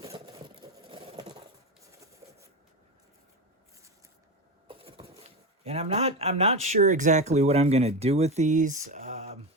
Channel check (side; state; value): both; normal; correlation 0.18